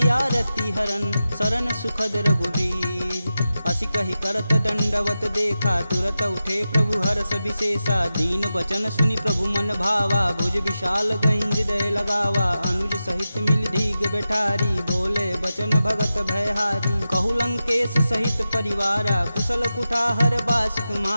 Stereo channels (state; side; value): inverted; both; correlation -0.92